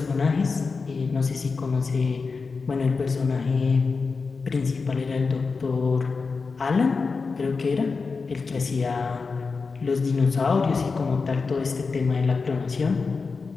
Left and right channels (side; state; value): right; quieter; 4.6 dB